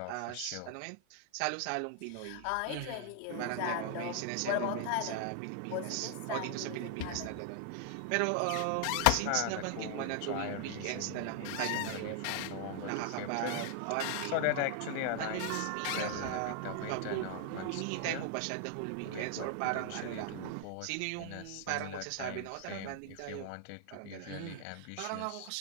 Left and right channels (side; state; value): both; different; correlation 0.00